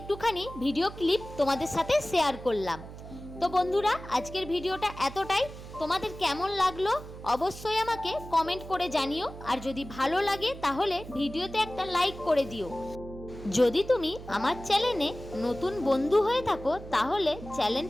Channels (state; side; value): noise; right; hum, 13 dB below the sound